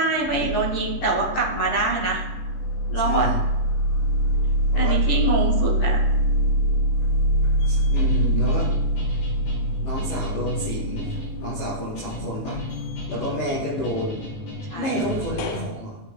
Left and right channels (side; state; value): right; late; 18 ms